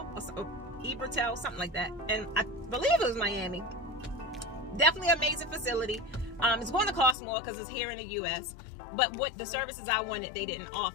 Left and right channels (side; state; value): right; drops out; at 7.2 s